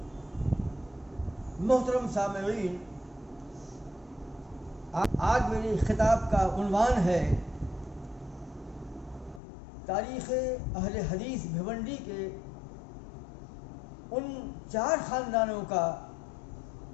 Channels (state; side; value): drops out; right; at 9.4 s